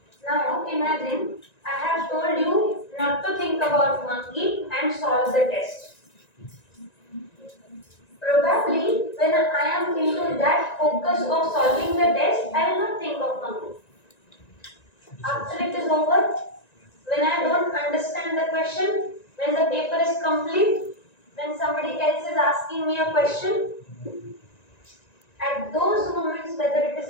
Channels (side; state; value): right; late; 1.9 ms